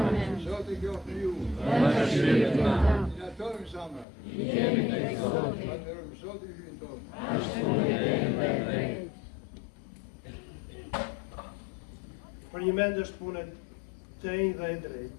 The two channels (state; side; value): drops out; right; at 4.0 s